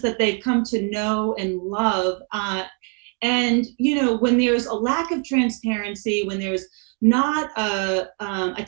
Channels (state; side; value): quieter; left; 39.1 dB